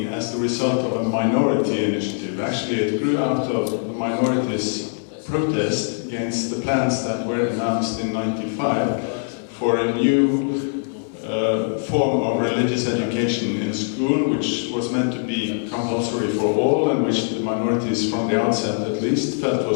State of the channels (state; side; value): silent; right; 64 dB below the other